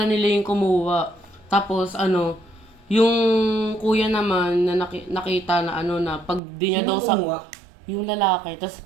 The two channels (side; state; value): left; drops out; at 6.4 s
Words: nila yung kumuha. Tapos ano, yung kuya naman na nakita na ano na pag di niya Sino daw sa kumuha? yung lalaki. Tapos